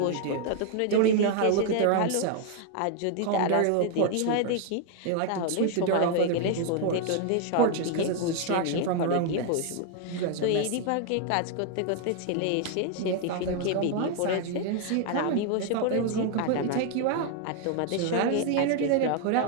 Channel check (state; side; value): different; both; correlation 0.00